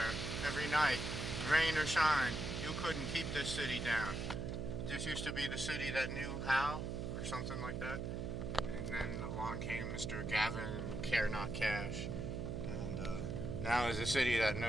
every night, rain or shine. You couldn't keep this city down. This used to be the city that knew how, or something like that. And then along came Mr. Gavin Care Not Cash. And now is a city that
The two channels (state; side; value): noise; right; hum, 3 dB below the sound